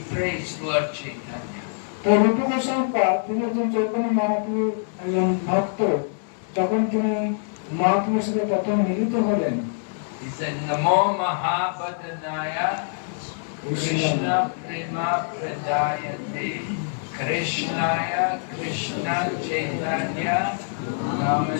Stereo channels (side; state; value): right; silent; digital silence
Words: praised Lord Chaitanya. তো রূপ গোস্বামী তিনি একজন চৈতন্য মহাপ্রভুর একজন ভক্ত যখন তিনি মহাপ্রভুর সাথে প্রথম মিলিত হলেন He said, Namo Mahabhadanaya Krishna Prema Pradayate Krishnaya Krishna Chaitanya